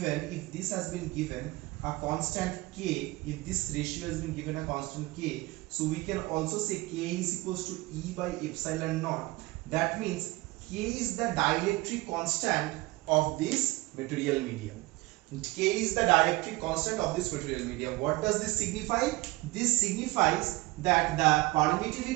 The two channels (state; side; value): quieter; left; 21.4 dB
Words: given a constant k, if this ratio has been given a constant k, so we can also say k is equals to E by epsilon naught. That means k is the dielectric constant of this material medium. K is the dielectric constant of this material medium. What does this signify? This signifies that the